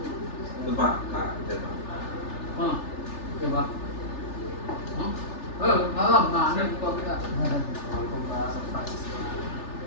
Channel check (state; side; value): late; right; 3.4 ms